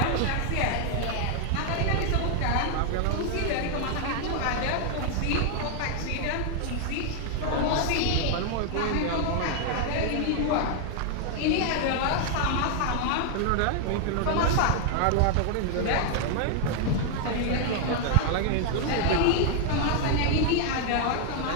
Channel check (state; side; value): different; both; correlation 0.00